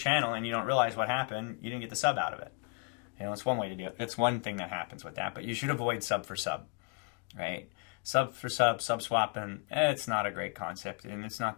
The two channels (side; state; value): right; quieter; 34.1 dB